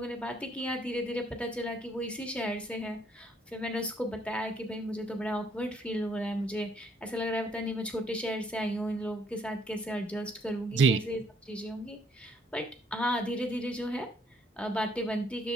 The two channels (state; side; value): normal; both; correlation 0.66